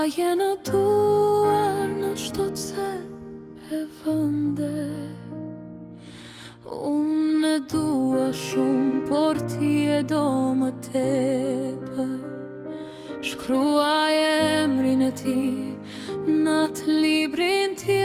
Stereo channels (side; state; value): both; identical; correlation 1.00